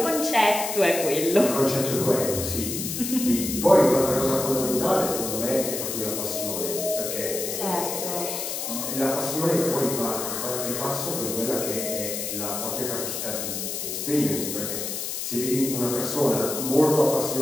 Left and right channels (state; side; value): noise; left; hiss, 4 dB below the sound